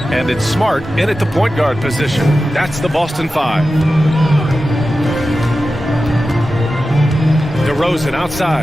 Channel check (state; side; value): normal; both; correlation 0.93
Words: And it's Smart in at the point guard position. That's the Boston 5. DeRozan